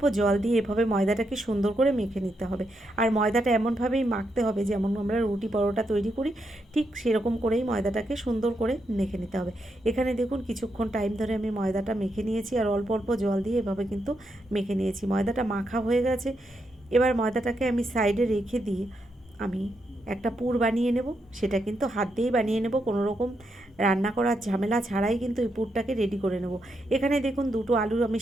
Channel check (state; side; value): normal; both; correlation 0.82